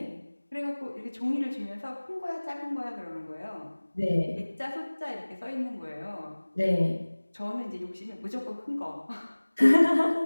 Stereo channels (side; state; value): both; inverted; correlation -1.00